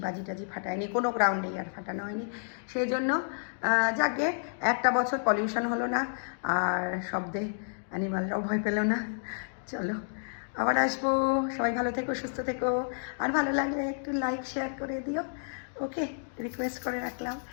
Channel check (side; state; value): right; silent; digital silence